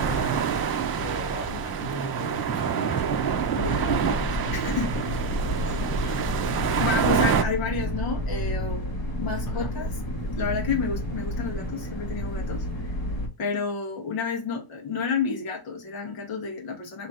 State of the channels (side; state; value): right; late; 1.0 ms